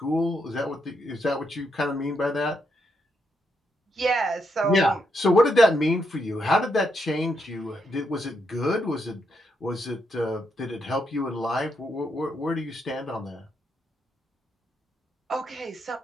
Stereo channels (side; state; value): both; normal; correlation 0.79